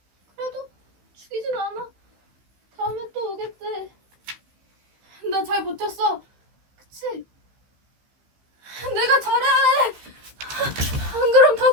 그래도 죽이진 않아. 다음에 또 오겠대. 나 잘 버텼어. 그치? 내가 잘해. 안 그럼 다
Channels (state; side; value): late; left; 15 ms